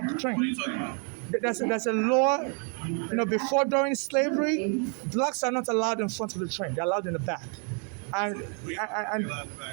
of the train. What are you talking about? There's a law. Before during slavery, blacks are not allowed in front of the train. They're allowed in the back. And Allowed in the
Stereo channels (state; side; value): quieter; left; 39.7 dB